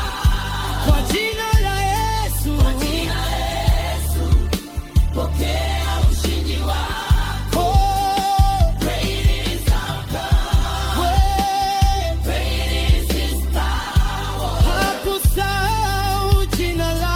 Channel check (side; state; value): both; identical; correlation 1.00